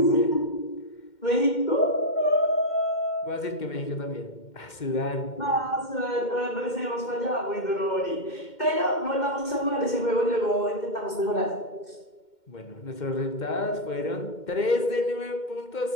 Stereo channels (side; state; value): right; late; 2.1 ms